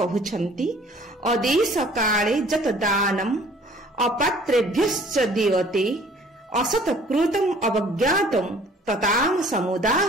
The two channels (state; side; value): normal; both; correlation 0.54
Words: କହୁଛନ୍ତି, ଅଦେଶ କାଳେ ଯତ ଦାନମ୍ ଅପାତ୍ରେଭ୍ୟଶ୍ଚ ଦୀୟତେ ଅସତକୃତଂ ଅବଜ୍ଞାତଂ ତତାମ